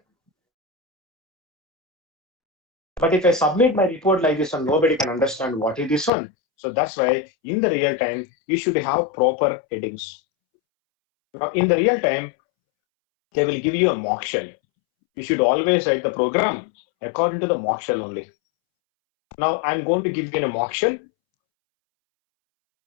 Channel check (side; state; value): right; drops out; at 6.1 s